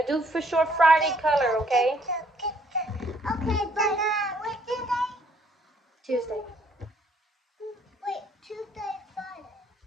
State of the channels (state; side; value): normal; both; correlation 0.65